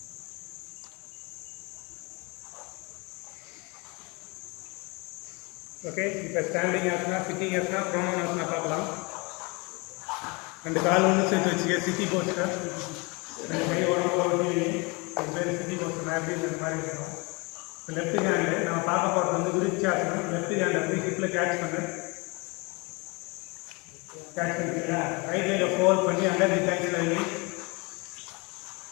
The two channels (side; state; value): right; quieter; 28.4 dB